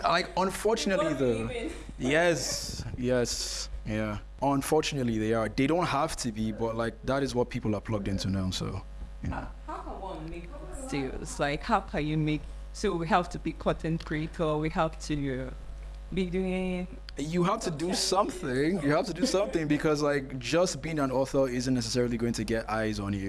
yes, yeah. Unfortunately, they are. They don't have to be, but that is what people are plugged into now. So, How can one make sales? Like, how can you make? So we have to be content creator. We have to be doing. You have to do something. You have to do something because just being an author isn't necessarily going to get eyes on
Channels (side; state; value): both; identical; correlation 1.00